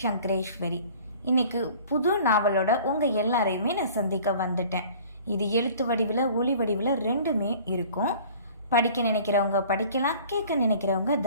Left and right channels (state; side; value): inverted; both; correlation -0.48